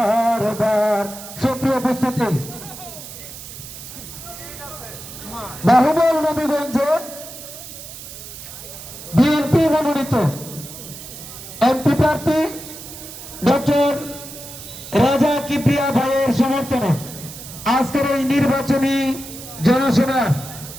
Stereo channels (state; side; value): noise; right; hiss, 13 dB below the sound